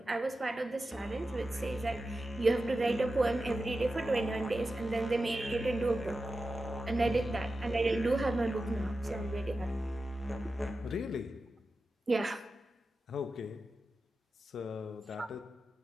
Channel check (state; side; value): normal; both; correlation 0.92